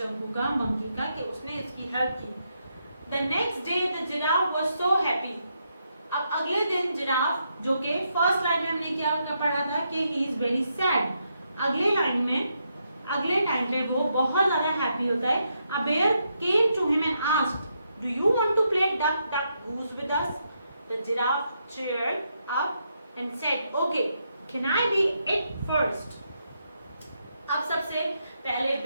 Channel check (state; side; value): inverted; both; correlation -0.80